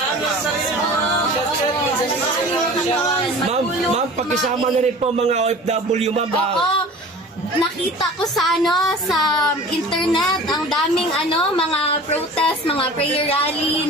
Ma'am, pakisama na rin po mga OFW, ma'am. Oo. Nakita ko sa internet ang daming mga protest, mga prayer rally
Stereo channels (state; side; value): normal; both; correlation 0.41